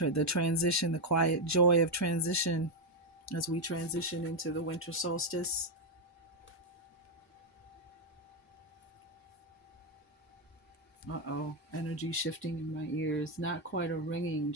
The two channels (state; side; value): normal; both; correlation 0.04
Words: the transition, the quiet joy of transition as we transition into the winter solstice. Uh-oh, energy shifting in my ears. Not quite a ringing,